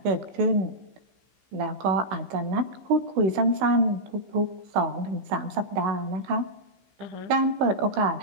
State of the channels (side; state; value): left; late; 15 ms